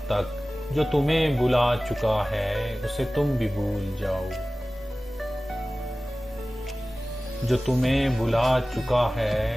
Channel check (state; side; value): normal; both; correlation 0.97